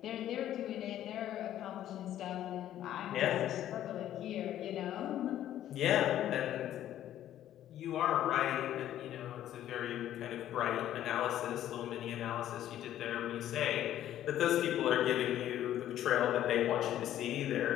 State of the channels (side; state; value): right; quieter; 12.0 dB